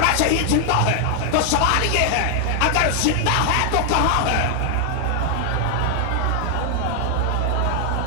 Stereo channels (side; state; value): both; different; correlation 0.00